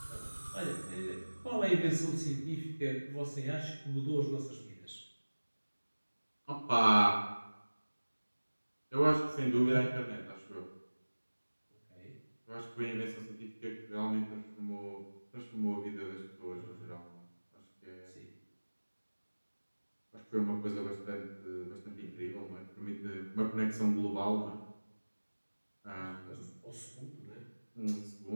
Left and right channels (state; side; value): inverted; both; correlation -1.00